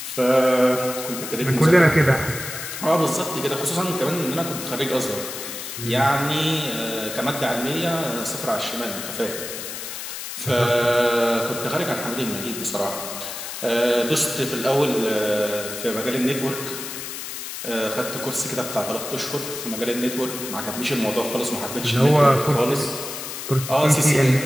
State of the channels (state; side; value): noise; left; hiss, 8 dB below the sound